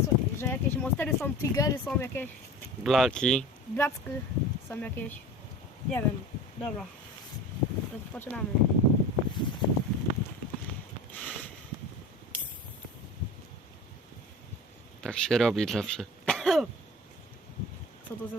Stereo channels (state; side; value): normal; both; correlation 0.36